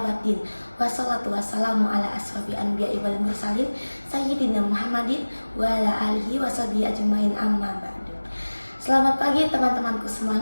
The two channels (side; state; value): both; inverted; correlation -1.00